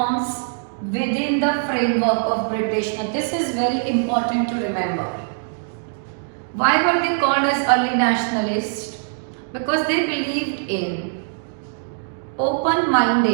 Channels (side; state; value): left; silent; digital silence